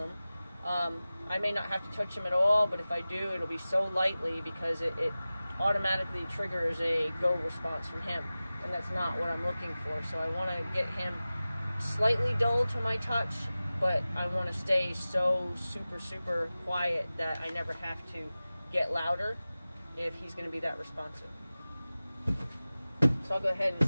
I may not have to touch him at all, but if I do, it'll be so lightly because it automatically triggers a go response from him, and that's not what I'm looking for. So I want to get him slightly dull to my touch, but I want to stay so super quiet that I never have to get louder if he's going to be that responsive. So I'll go ahead and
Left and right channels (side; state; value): both; inverted; correlation -0.96